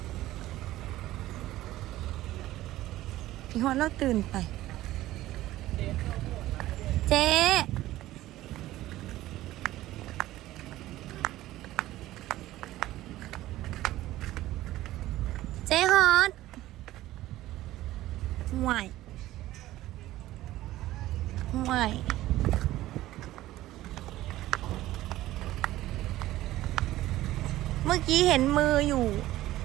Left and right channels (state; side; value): quieter; left; 15.6 dB